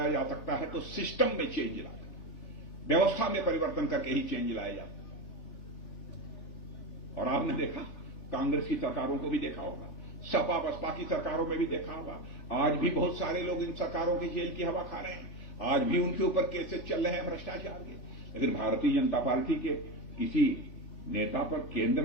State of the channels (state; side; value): late; right; 3.4 ms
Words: जा सकता है तो सिस्टम में चेंज लाकर, व्यवस्था में परिवर्तन करके ही चेंज लाया जा सकता है। और आपने देखा, कांग्रेस की सरकारों को भी देखा होगा, सपा बसपा की सरकारों में भी देखा होगा, आज भी बहुत सारे लोग इन सरकारों की जेल की हवा खा रहे हैं, आज भी उनके ऊपर केसेस चल रहे हैं भ्रष्टाचार के। लेकिन भारतीय जनता पार्टी के किसी नेता पर केंद्र